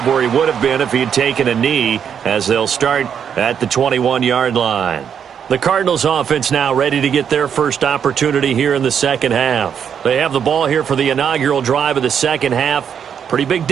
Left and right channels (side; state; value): left; quieter; 7.9 dB